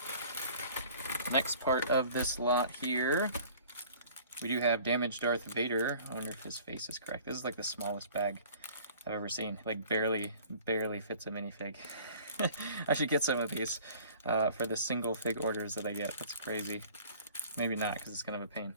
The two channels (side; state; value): both; inverted; correlation -0.49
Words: Next part of this lot here, we do have Damaged Darth Vader. I wonder if his face is correct. This is like the smallest bag I've ever seen. Like barely fits a minifig. I should get some of these for the single fig orders that I get. That's crazy. Maybe not, because it's kind of a pain.